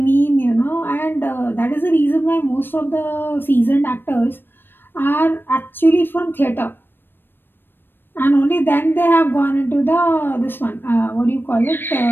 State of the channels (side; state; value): right; late; 0.097 ms